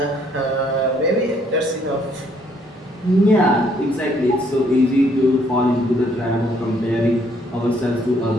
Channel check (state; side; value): normal; both; correlation 0.67